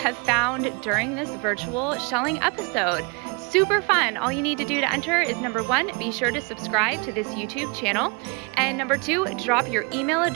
found during this virtual shelling episode. Super fun. All you need to do to enter is number 1, be sure to subscribe to this YouTube channel. And number 2, drop your email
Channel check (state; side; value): quieter; left; 31.7 dB